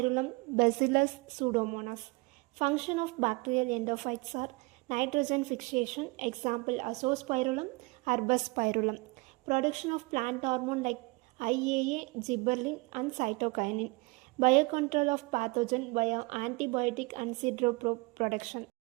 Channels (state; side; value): quieter; left; 26.3 dB